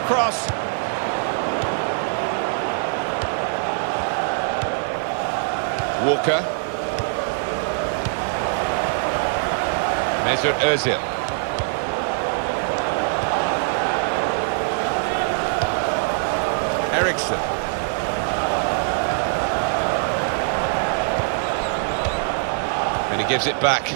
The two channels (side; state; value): left; silent; digital silence